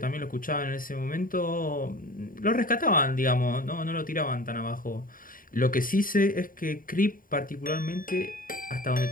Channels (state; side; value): late; right; 0.41 ms